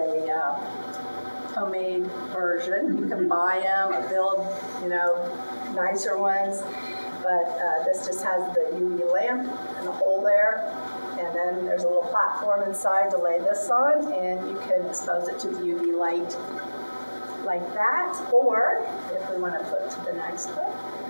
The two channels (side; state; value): both; inverted; correlation -1.00